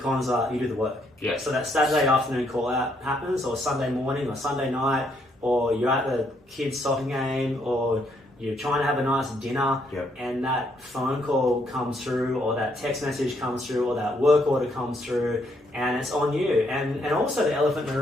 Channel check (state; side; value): normal; both; correlation 0.72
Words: cons are you do the work. Yeah. So that Saturday afternoon call out happens, or Sunday morning, or Sunday night, or you're at the kids' soccer game, or you're trying to have a nice dinner, and that phone call comes through, or that text message comes through, or that work order comes through, and it's on you. And also the elephant in the